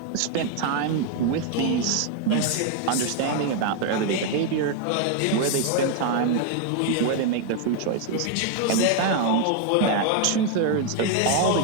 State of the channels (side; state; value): both; different; correlation 0.00